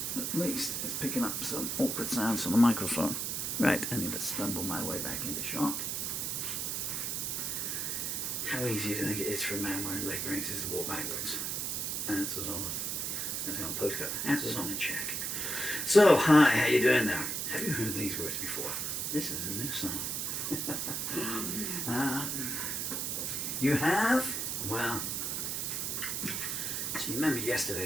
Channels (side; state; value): right; noise; hiss, 1 dB below the sound